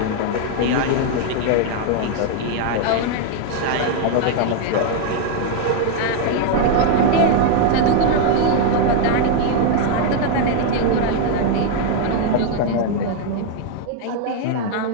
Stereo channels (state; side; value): different; both; correlation 0.01